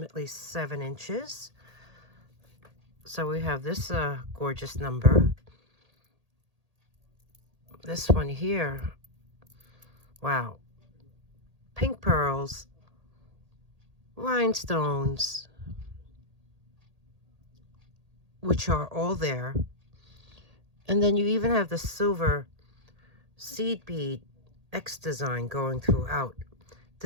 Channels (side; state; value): left; late; 1.8 ms